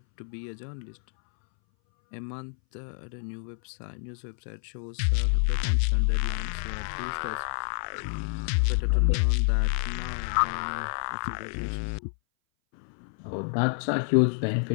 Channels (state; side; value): silent; right; 59 dB below the other